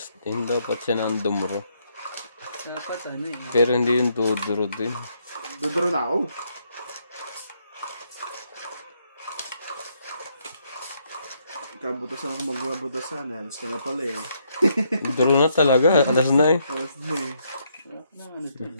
din dapat siya ng dumuro. dapat eh. Pero hindi yung duduro din. Duduro na ako. Kabutasan ako magbabutasan. Alas ka na pala eh. Duro na talaga. Alas na eh. Alas na eh. Wala ka naman ito.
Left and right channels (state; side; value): inverted; both; correlation -0.74